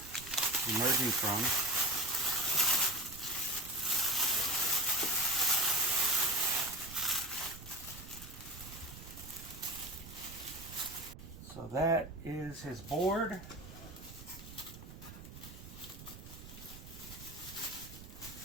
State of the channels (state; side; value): noise; right; rumble, 14 dB below the sound